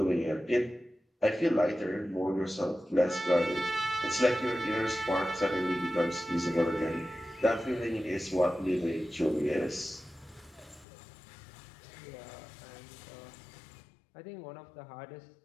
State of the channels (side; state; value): right; drops out; at 10.9 s